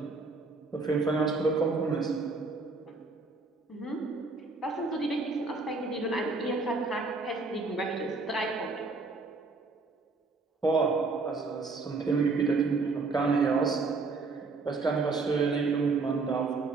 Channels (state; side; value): quieter; left; 3.9 dB